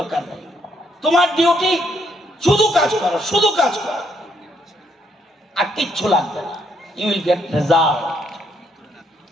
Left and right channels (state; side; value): normal; both; correlation 0.72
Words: নেই। তোমার ডিউটি শুধু কাজ করো, শুধু কাজ করো, আর কিচ্ছু লাগবে না, ইউ উইল গেট রেজাল্ট।